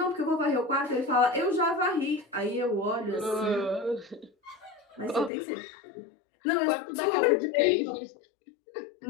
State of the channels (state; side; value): drops out; right; at 5.3 s